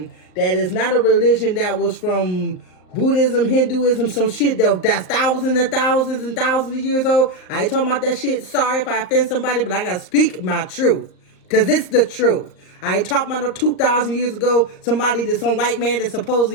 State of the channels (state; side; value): late; right; 38 ms